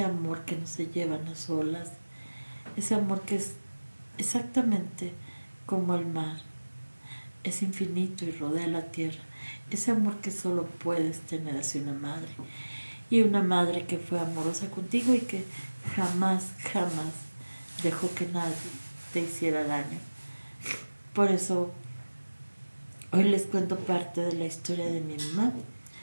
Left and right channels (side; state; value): both; inverted; correlation -1.00